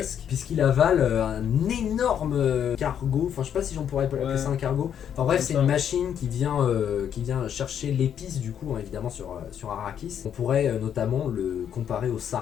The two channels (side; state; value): right; quieter; 8.9 dB